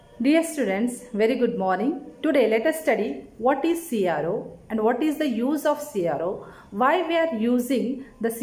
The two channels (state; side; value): identical; both; correlation 1.00